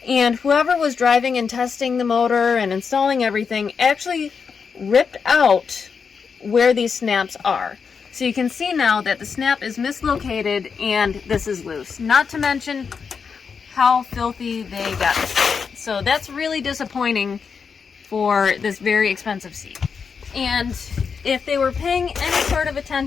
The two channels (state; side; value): quieter; right; 5.9 dB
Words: and whoever was driving and testing the motor and installing everything actually ripped out where these snaps are. So you can see now that the snap is mislocated and this is loose. Not to mention how filthy they got it. So that's really disappointing for this very expensive seat. And if they were paying any sort of